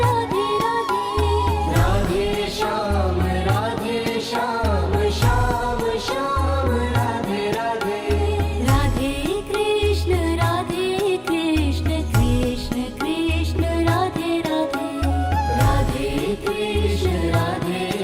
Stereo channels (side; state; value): both; identical; correlation 1.00